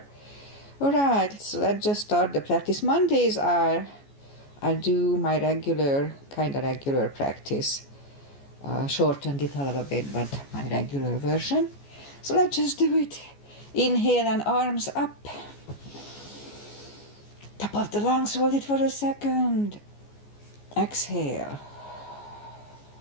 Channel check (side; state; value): right; late; 14 ms